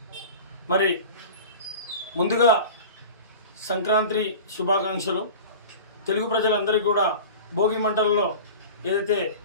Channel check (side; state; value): both; inverted; correlation -0.36